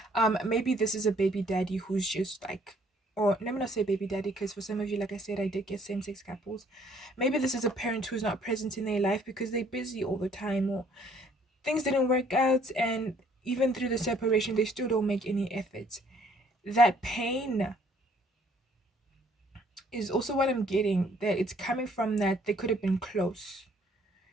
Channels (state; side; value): normal; both; correlation 0.62